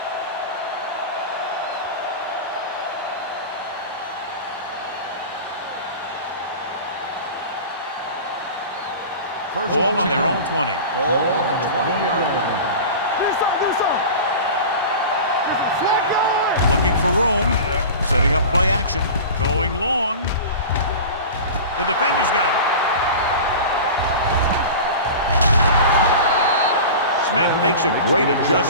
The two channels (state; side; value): inverted; both; correlation -0.33